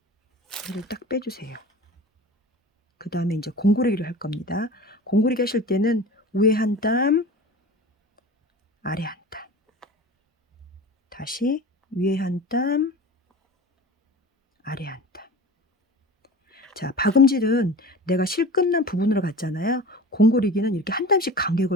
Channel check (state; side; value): normal; both; correlation 0.36